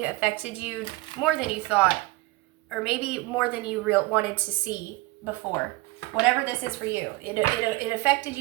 affected you more than you thought, or maybe more than you wanted to see before. Whatever this is for you, it affected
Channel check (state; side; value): quieter; left; 20.8 dB